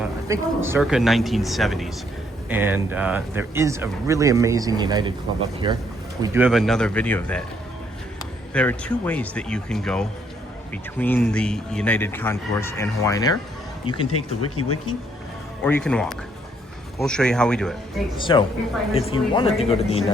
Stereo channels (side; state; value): both; normal; correlation 0.70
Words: think, circa 1970s. And there is a really amazing United Club up here. We do have another video of that. There are two ways that you can go between the United Concourse and Hawaiian Air. You can take the Wiki Wiki, or you can walk. We'll show you how we do it. So, if you wanted to go to the